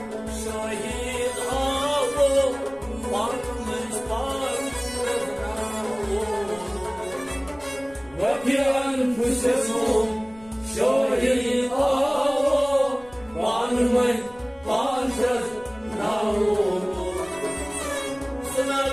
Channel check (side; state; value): left; noise; rumble, 24 dB below the sound